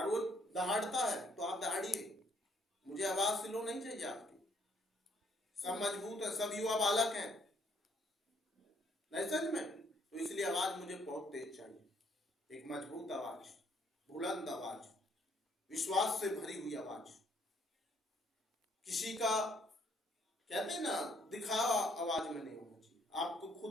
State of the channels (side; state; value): both; normal; correlation 0.67